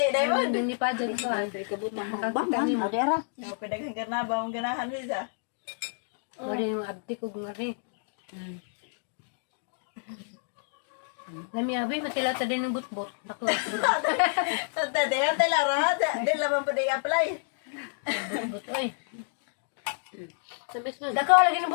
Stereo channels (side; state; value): right; silent; digital silence